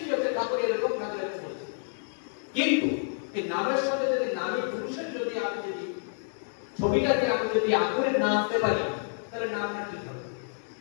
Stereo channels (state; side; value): silent; right; digital silence